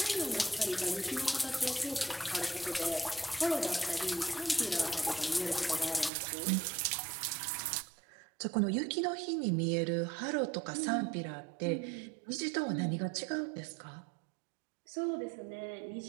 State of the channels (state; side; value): drops out; left; at 6.1 s